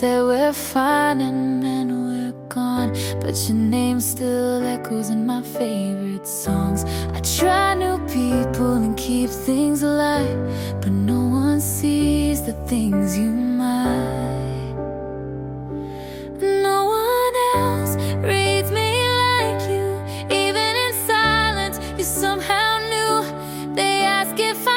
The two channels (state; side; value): identical; both; correlation 1.00